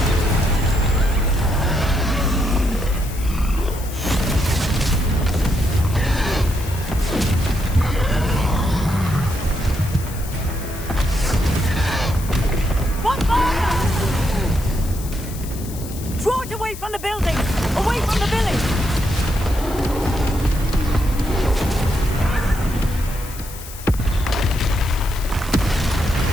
Draw it away from the building! Away from the village!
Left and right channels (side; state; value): left; noise; hiss, 14 dB below the sound